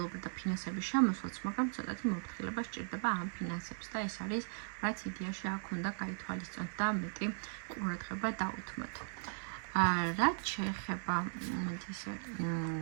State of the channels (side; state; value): left; silent; digital silence